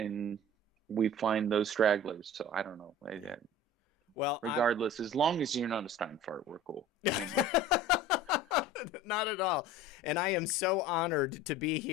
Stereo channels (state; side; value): normal; both; correlation 0.40